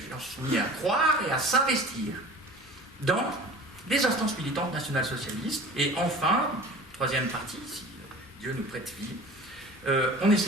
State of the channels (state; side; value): normal; both; correlation 0.41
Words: croire et à s'investir dans des instances militantes nationales-socialistes. Et enfin, troisième partie, si Dieu nous prête vie, on